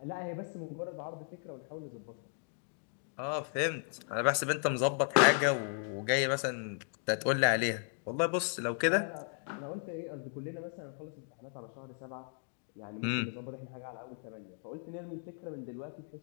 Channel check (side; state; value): right; silent; digital silence